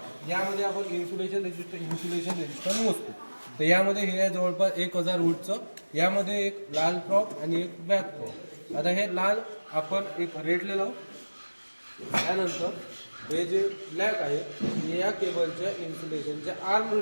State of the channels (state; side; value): inverted; both; correlation -1.00